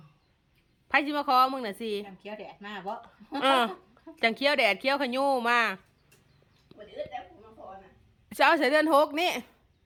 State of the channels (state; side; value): identical; both; correlation 1.00